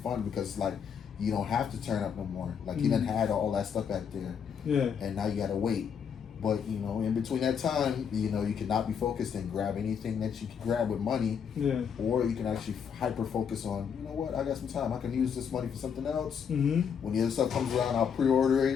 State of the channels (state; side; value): quieter; right; 7.2 dB